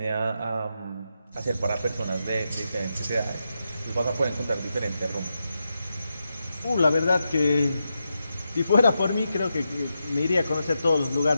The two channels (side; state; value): both; inverted; correlation -0.87